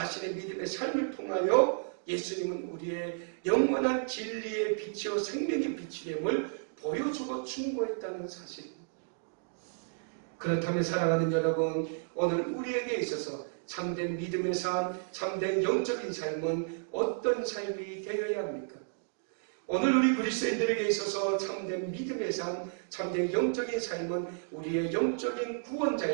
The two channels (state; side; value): silent; left; digital silence